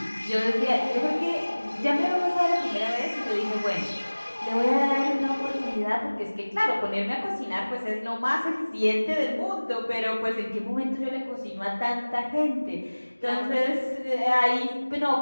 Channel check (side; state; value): both; inverted; correlation -1.00